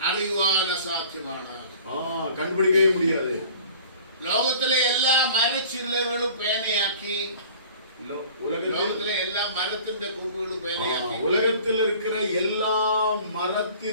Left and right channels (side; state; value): both; inverted; correlation -0.46